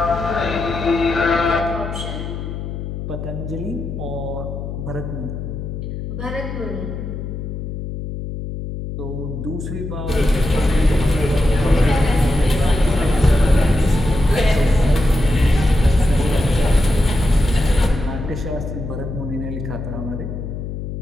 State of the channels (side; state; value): left; noise; hum, 6 dB below the sound